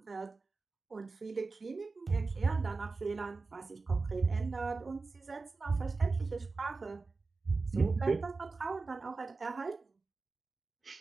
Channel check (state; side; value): quieter; left; 3.9 dB